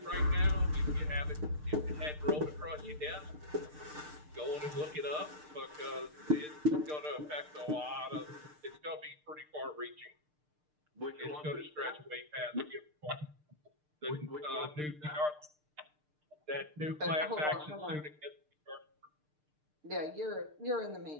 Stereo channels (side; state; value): left; late; 6.6 ms